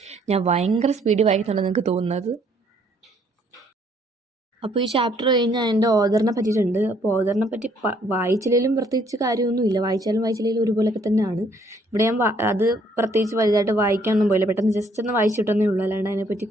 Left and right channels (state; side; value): normal; both; correlation 0.65